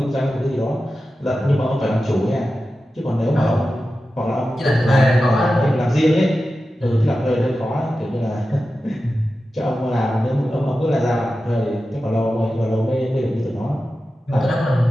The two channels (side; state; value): both; normal; correlation 0.93